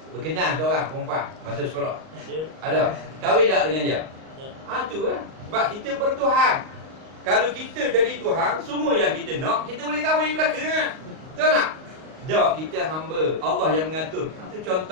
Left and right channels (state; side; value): late; left; 38 ms